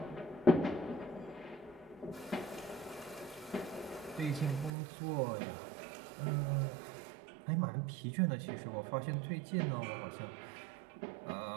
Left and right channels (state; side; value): drops out; left; at 4.7 s